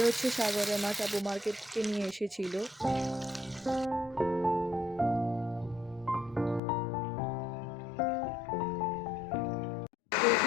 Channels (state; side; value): drops out; right; at 6.6 s